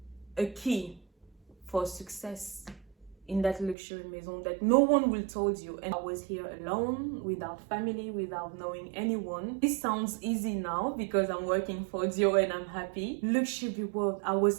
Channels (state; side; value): drops out; left; at 3.8 s